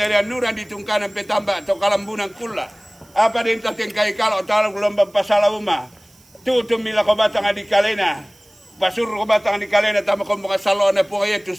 nuran ditungkanan petamba to kalambunan kula. Apa din tating kay kalau talo gelombang pasala uma. Tutu mila ko bata nga di kalena. Pasur ko bata nga di kalena tama ko mga salona po kaya tu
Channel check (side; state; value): right; noise; hiss, 29 dB below the sound